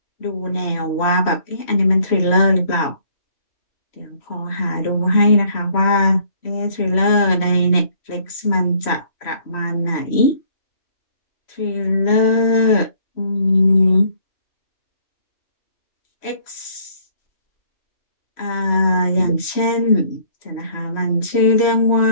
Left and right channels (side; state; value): right; late; 3.1 ms